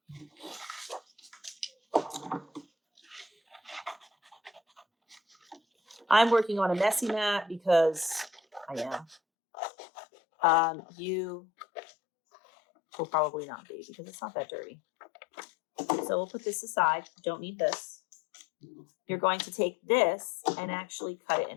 I'm working on a messy mat because I am. You will probably not be because it's not that dirty. So we'll put this aside. Don't need this. You're going to take this and actually cut it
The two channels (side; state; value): right; drops out; at 9.2 s